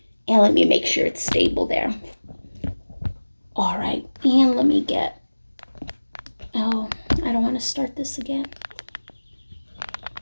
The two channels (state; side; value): inverted; both; correlation -1.00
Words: And let me make sure it's stable there. All right, and let me I don't want to start this again.